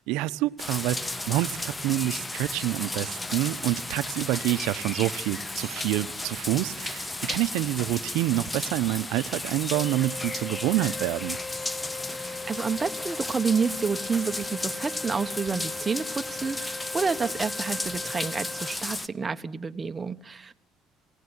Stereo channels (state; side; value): quieter; left; 5.9 dB